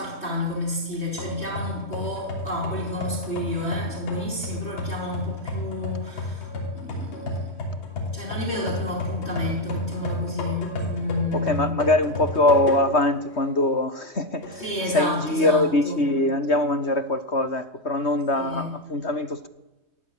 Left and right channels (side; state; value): right; late; 3.2 ms